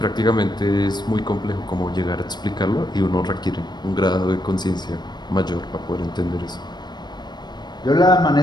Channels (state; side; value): late; right; 0.21 ms